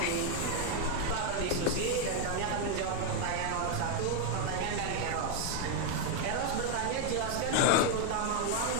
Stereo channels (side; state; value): both; different; correlation 0.00